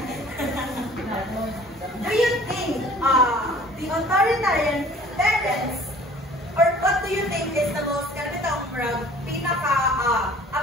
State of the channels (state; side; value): normal; both; correlation 0.50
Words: Do you think the authoritarian parents, or what do you think is the most